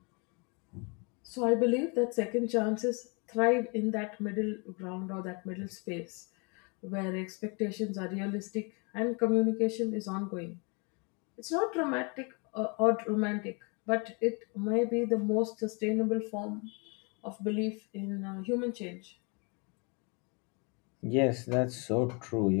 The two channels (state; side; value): quieter; right; 32.9 dB